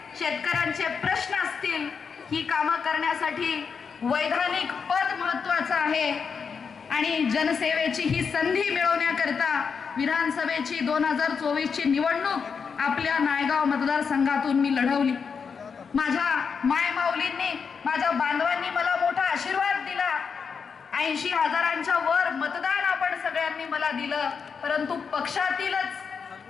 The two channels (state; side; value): quieter; right; 6.0 dB